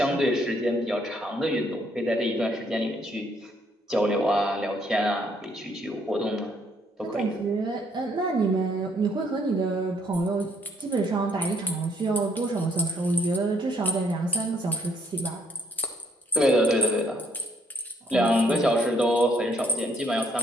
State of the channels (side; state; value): both; normal; correlation 0.68